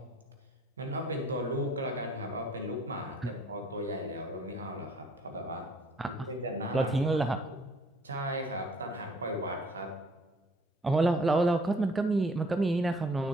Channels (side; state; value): both; normal; correlation 0.58